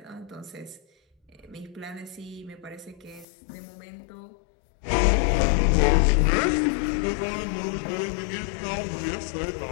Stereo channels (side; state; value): right; drops out; at 3.2 s